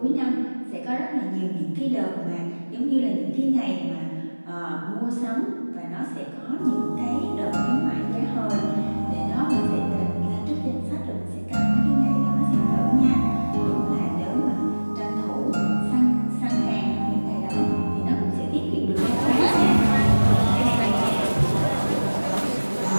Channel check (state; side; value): inverted; both; correlation -1.00